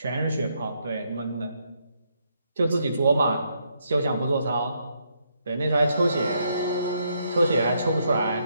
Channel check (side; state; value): both; inverted; correlation -0.76